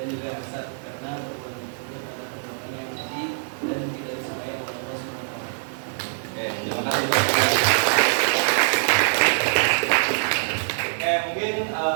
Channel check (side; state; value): left; silent; 57 dB below the other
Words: juga hasad, karena perbuatan tersebut adalah perbuatan yang keji dan tidak disukai oleh Allah SWT. Oke, terima kasih. Oke, mungkin